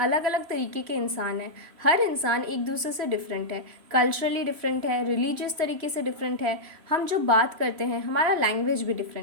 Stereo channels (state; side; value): late; left; 3.0 ms